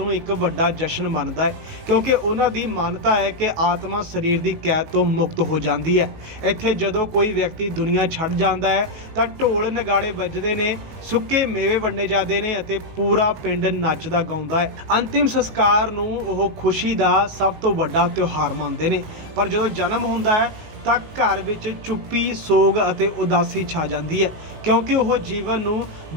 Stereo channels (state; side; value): late; left; 19 ms